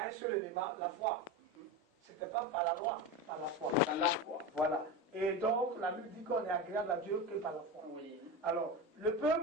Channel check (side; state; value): both; normal; correlation 0.22